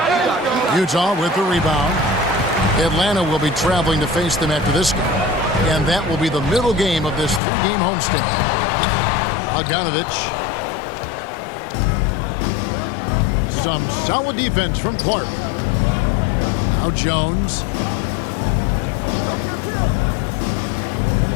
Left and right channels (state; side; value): drops out; right; at 7.4 s